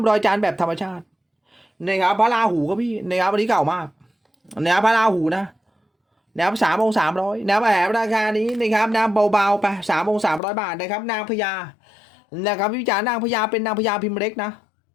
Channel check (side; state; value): right; drops out; at 10.4 s